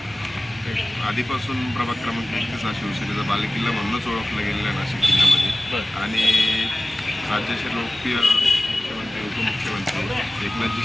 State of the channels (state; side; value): normal; both; correlation 0.97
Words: आधीपासून प्रभाग क्रमांक 31 हा शिवसेनेचा बालेकिल्ला म्हणूनच ओळखला गेलेला आहे नाशिक जिल्ह्यामध्ये। आणि राज्याचे लोकप्रिय मुख्यमंत्री उपमुख्यमंत्री एकनाथजी